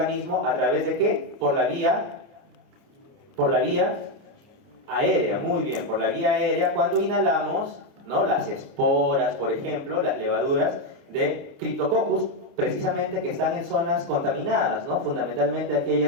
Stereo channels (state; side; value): late; left; 29 ms